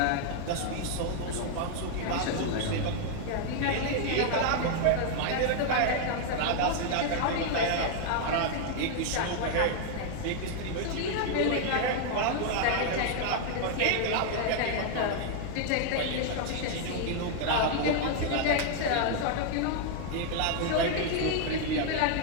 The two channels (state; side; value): different; both; correlation 0.00